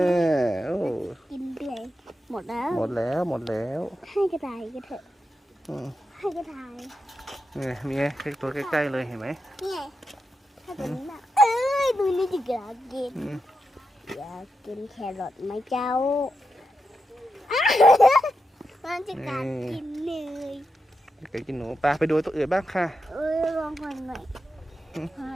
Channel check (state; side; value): normal; both; correlation 0.87